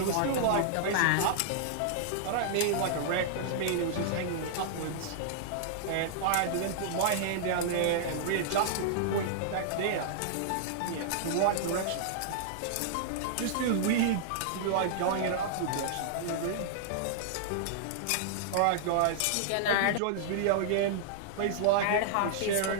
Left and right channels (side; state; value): both; different; correlation -0.01